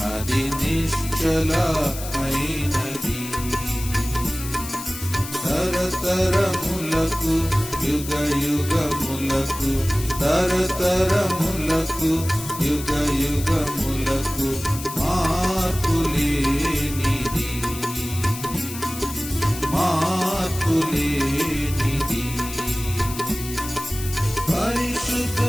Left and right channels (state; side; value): noise; left; hiss, 10 dB below the sound